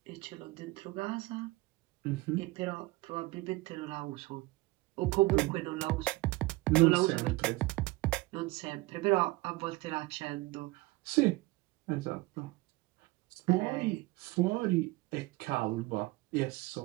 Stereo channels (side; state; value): left; quieter; 21.5 dB